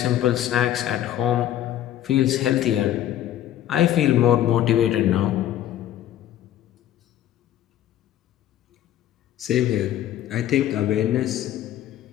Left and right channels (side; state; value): right; quieter; 12.2 dB